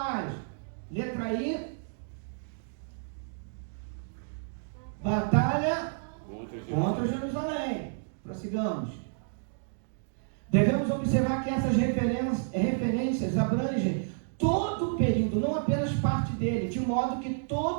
Letra I, batalha contra Jerusalém. Prossigamos. Devemos observar que essas referências abrangem todo o período, não apenas parte dele, de modo que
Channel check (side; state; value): left; silent; digital silence